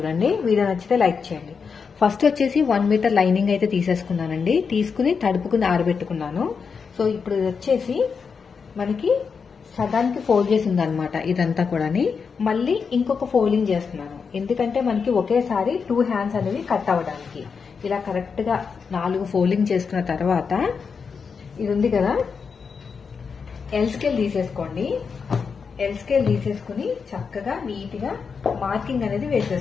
వీడియో నచ్చితే లైక్ చేయండి. ఫస్ట్ వచ్చేసి 1 మీటర్ లైనింగ్ అయితే తీసేసుకున్నానండి. తీసుకుని తడుపుకుని ఆరబెట్టుకున్నాను. సో ఇప్పుడు ఇది వచ్చేసి మనకి సగానికి ఫోల్డ్ చేసి ఉందన్నమాట. ఇదంతా కూడా మళ్ళీ ఇంకొక ఫోల్డింగ్ చేస్తున్నాను. ఎందుకంటే మనకి ఒకేసారి 2 హ్యాండ్స్ అనేవి కట్ అవ్వడానికి. ఇలా కరెక్ట్ గా 4 ఫోల్డింగ్ చేసుకున్న తర్వాత ఇది ఉంది కదా, ఎల్ స్కేల్ తీసేసుకోండి. ఎల్ స్కేల్ తీసేసుకుని చక్కగా నీట్ గా మార్కింగ్ అనేది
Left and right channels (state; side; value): quieter; right; 5.7 dB